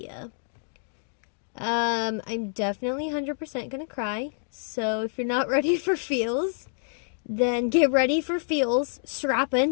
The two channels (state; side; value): silent; right; digital silence